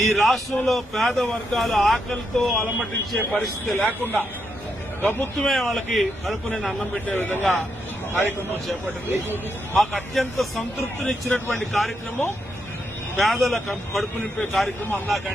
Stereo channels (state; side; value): normal; both; correlation 0.81